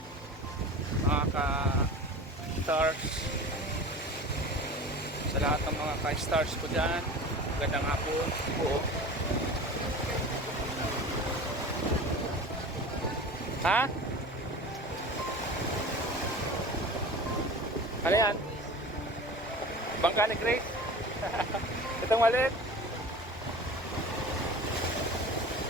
Mga ka-stars. Sa lahat ng mga ka-stars ko dyan. Magandang hapon po. Ha? Ano yan? Bangka ni Grace? Itong maliit?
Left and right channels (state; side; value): normal; both; correlation 0.36